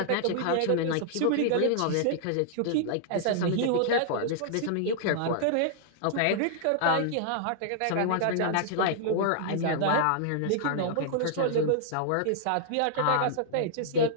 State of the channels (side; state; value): both; different; correlation -0.01